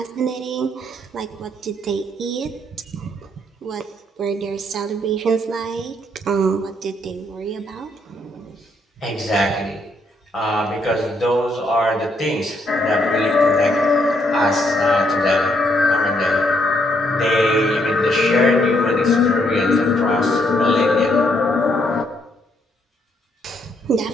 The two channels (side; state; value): both; normal; correlation 0.73